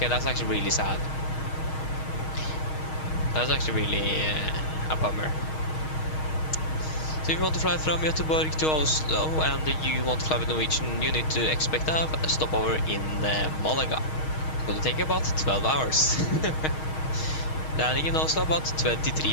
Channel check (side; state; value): right; late; 6.4 ms